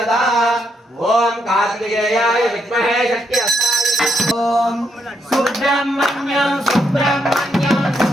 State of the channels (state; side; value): normal; both; correlation 0.78